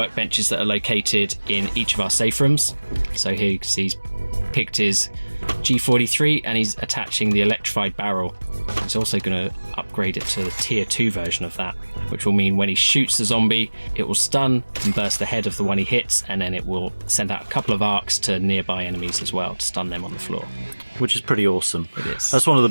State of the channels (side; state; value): both; inverted; correlation -1.00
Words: that are located in each of our safe rooms. So here you can see he's picked his G43 and he's attaching the electrified barrel. He's also going to upgrade it to the tier 2 version of that, which will mean when he shoots the zombie, it will stun and burst the head of the one he hits, and then it will send out a couple of arcs to nearby enemies as well to stun them on the floor. Which is pretty awesome. It is. That's one of the